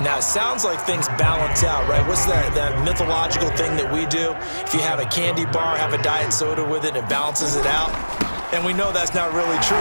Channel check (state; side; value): inverted; both; correlation -1.00